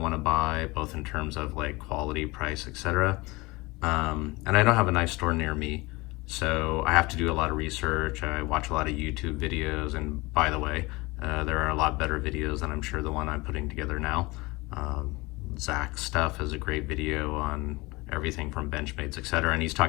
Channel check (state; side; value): quieter; right; 23.1 dB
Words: to buy, both in terms of like quality, price, etc. And I don't have a knife store near me, so I have to do a lot of research. I watch a lot of YouTube videos, and by the way, there are a lot better videos than I'm sure the one I'm putting together now. Zach's stuff is a great video on everything from Benchmades, etc. And he's